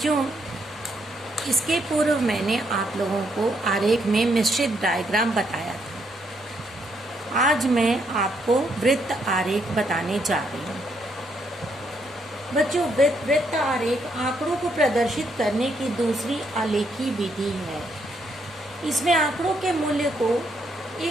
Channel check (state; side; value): normal; both; correlation 0.75